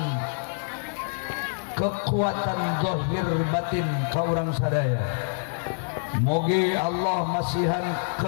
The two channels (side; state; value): right; silent; digital silence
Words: kekuatan zahir batin ka urang sadaya. Moga Allah masihan